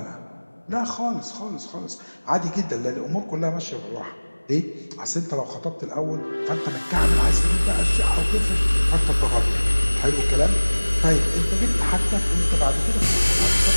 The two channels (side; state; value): both; inverted; correlation -1.00